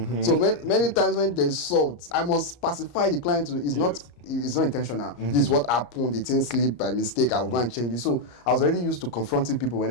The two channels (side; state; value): right; late; 34 ms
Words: So many times when there's salt, I must pacify the client. It's not intentional. This is what happened. It didn't slip by mistake. I will go and change it. So I was already used to confronting people